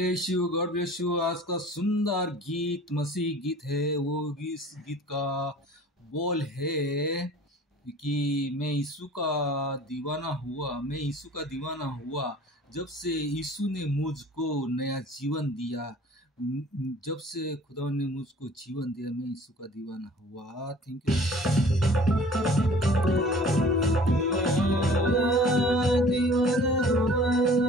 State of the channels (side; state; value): both; normal; correlation 0.48